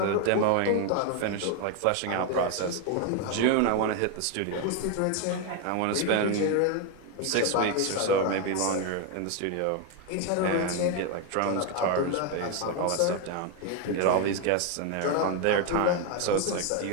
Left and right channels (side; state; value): both; different; correlation 0.01